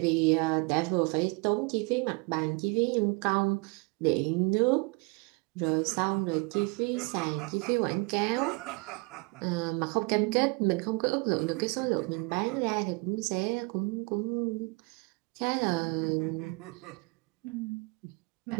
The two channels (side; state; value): left; quieter; 29.9 dB